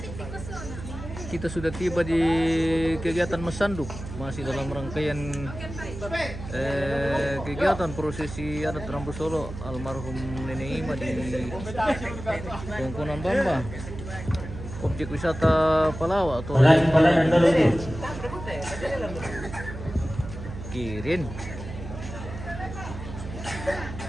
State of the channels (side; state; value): right; noise; hum, 10 dB below the sound